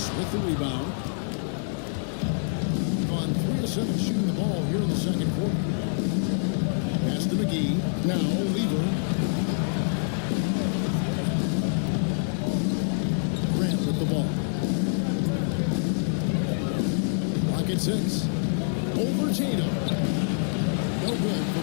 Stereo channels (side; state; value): right; silent; digital silence